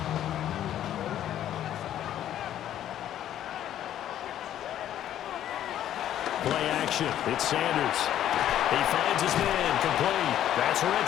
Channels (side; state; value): right; quieter; 11.4 dB